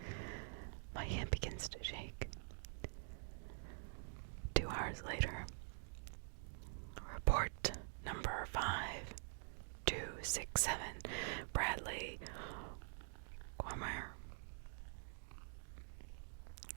My hand begins to shake. 2 hours later, report number 5267, Bradley Cormier.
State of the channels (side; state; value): left; silent; digital silence